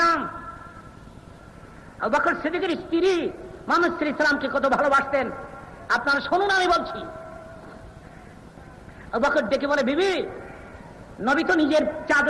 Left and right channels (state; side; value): identical; both; correlation 1.00